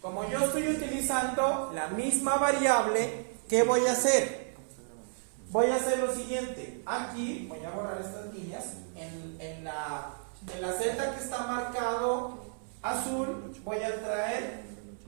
Como yo estoy utilizando la misma variable, ¿qué voy a hacer? Voy a hacer lo siguiente. Aquí voy a borrar estas líneas. En la celda que está marcado azul, voy a traer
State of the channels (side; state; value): left; silent; 57 dB below the other